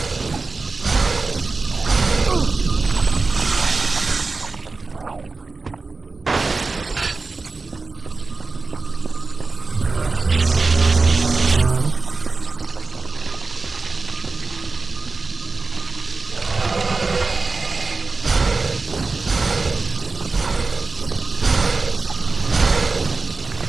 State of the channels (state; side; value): quieter; left; 3.9 dB